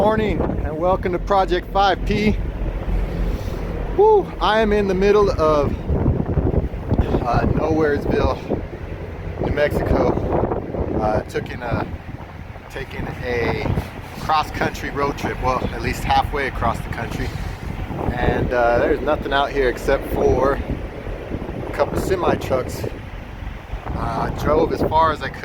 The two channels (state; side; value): identical; both; correlation 1.00